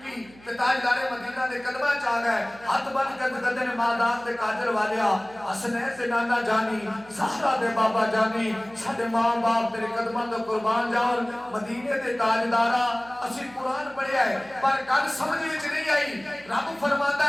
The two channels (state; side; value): noise; right; hum, 24 dB below the sound